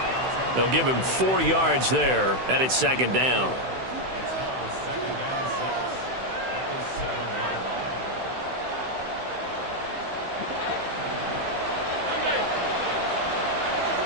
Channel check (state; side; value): late; left; 16 ms